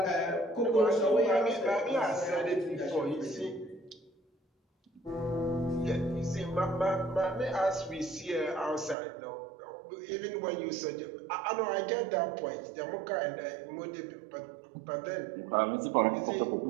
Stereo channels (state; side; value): drops out; left; at 9.0 s